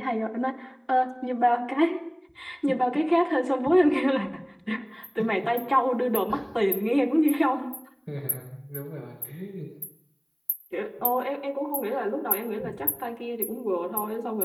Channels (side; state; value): both; identical; correlation 1.00